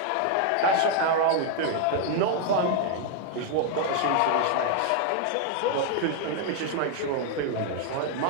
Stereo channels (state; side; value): different; both; correlation 0.00